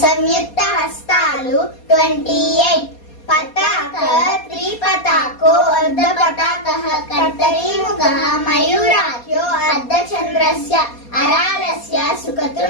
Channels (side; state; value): right; late; 4.2 ms